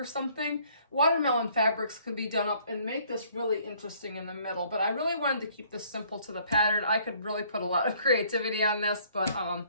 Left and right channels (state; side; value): inverted; both; correlation -0.61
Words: something, watermelon fabrics could be done up and make this really interesting in the middle. But I really wanted to keep this simple to the pattern. I could really put a lot of creativity on this, but